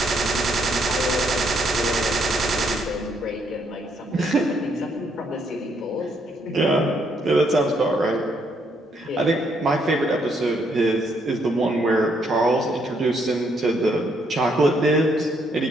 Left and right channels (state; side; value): normal; both; correlation 0.72